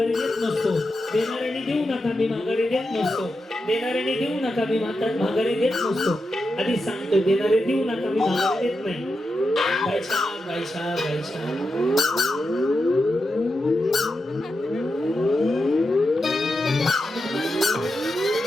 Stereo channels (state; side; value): normal; both; correlation 0.88